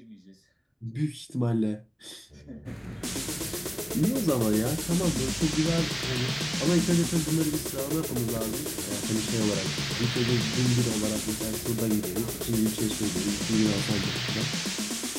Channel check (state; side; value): identical; both; correlation 1.00